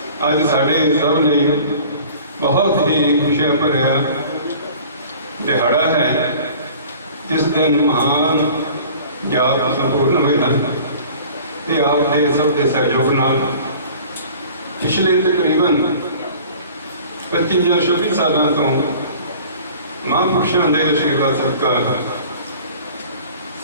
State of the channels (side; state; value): both; inverted; correlation -0.46